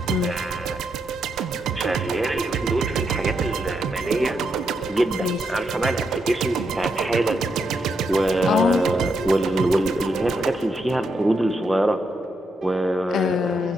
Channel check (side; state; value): both; normal; correlation 0.81